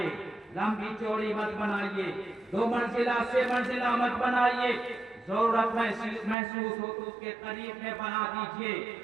لمبی چوڑی مت بنائیے، 2 منزلہ سے منزلہ مت بنائیے، ضرورت محسوس ہو تو اس کے قریب میں بنا دیجئے۔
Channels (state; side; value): drops out; left; at 6.4 s